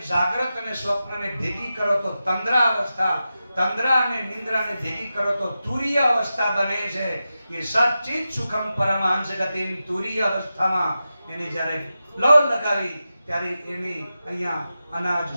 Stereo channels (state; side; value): inverted; both; correlation -0.92